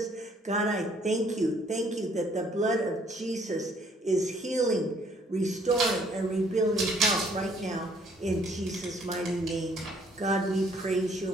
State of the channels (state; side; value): normal; both; correlation 0.63